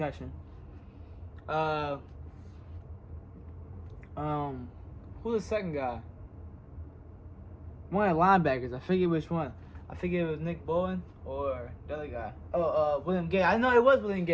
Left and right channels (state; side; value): identical; both; correlation 1.00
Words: Who's the second guy? One of the linebackers. I forget which one. I forget it was Nick Bowen or the other guy. William Gay. I know it was William